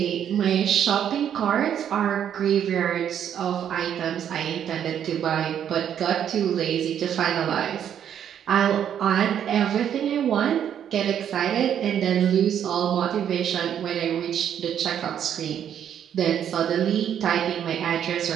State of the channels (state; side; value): quieter; left; 9.4 dB